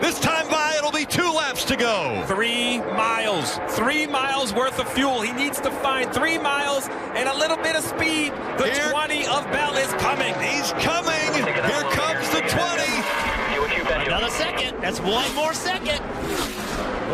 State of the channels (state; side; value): identical; both; correlation 1.00